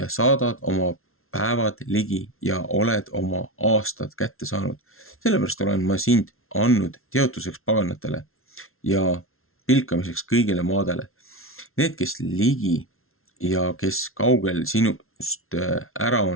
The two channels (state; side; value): late; right; 0.62 ms